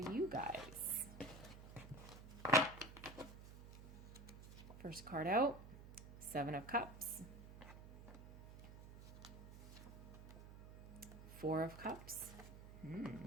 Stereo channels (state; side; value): noise; right; hum, 14 dB below the sound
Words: guys. First card out, Seven of Cups. Four of Cups.